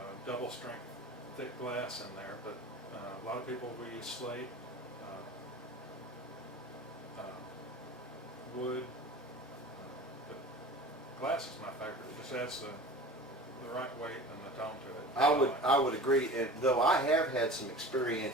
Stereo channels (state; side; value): normal; both; correlation 0.38